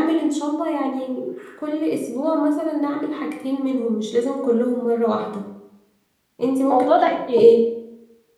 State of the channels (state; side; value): identical; both; correlation 1.00